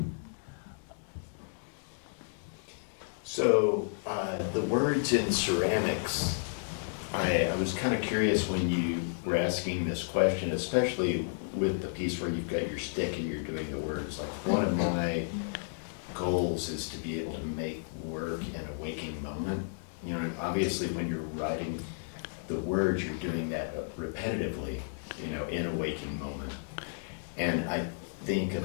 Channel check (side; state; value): right; silent; digital silence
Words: So the words in ceramics, I was kind of curious when you were asking this question, especially with the piece where you've got your stick and you're doing the words. Like, one of my goals is to be able to make work in a waking moment. You know, obviously when you're writing the words, you're doing that repetitively you know, in a waking moment. And I think